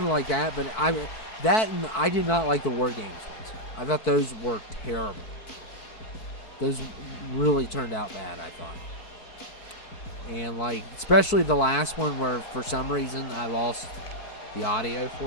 like that, but I did not like the War Games ones. I thought those were terrible. Those really turned out bad, I thought. And like, especially the last one where for some reason I lost the audio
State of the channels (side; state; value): right; late; 4.6 ms